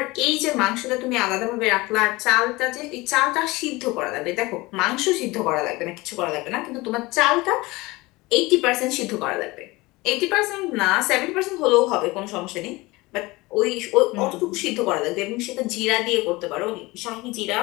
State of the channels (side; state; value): right; quieter; 21.9 dB